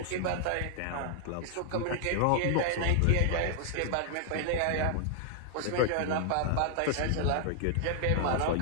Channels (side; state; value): both; different; correlation 0.00